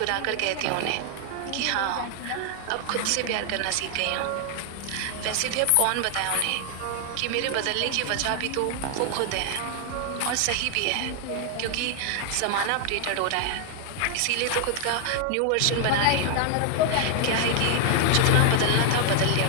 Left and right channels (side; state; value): both; different; correlation 0.00